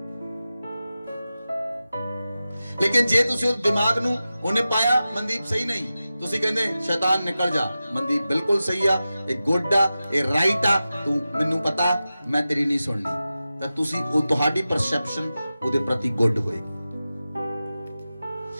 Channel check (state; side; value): inverted; both; correlation -0.94